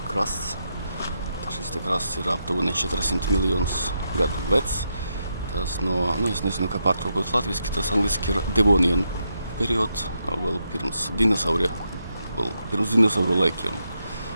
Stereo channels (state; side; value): inverted; both; correlation -0.82